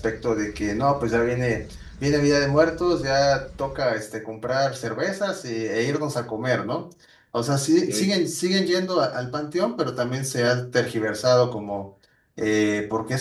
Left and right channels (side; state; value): both; identical; correlation 1.00